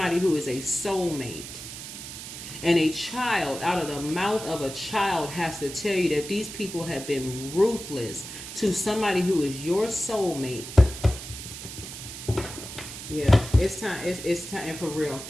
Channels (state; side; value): noise; right; hiss, 10 dB below the sound